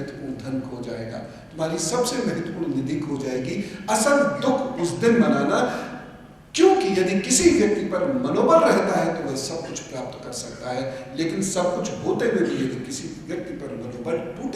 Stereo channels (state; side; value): identical; both; correlation 1.00